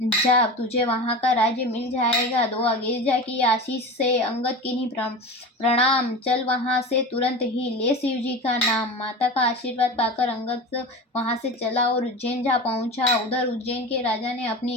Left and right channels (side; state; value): both; normal; correlation 0.29